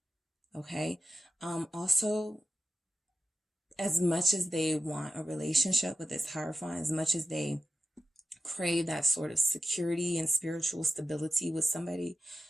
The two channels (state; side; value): normal; both; correlation 0.92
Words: Okay. Also, as much as they want a relationship with this Hierophant, as much as they crave that sort of security and spiritual stability with somebody,